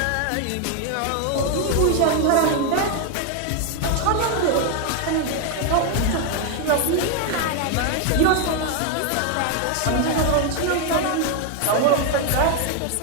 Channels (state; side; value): different; both; correlation 0.01